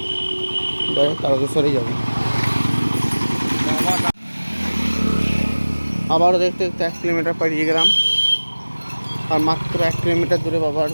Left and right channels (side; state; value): both; inverted; correlation -1.00